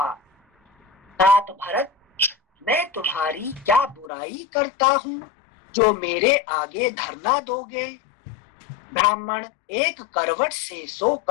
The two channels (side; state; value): right; drops out; at 4.1 s